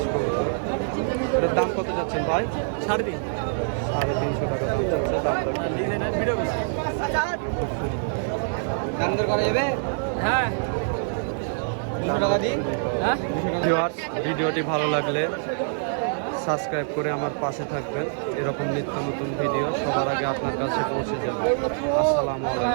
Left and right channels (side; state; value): left; silent; digital silence